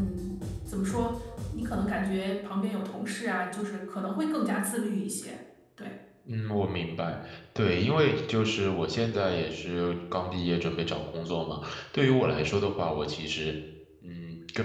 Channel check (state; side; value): identical; both; correlation 1.00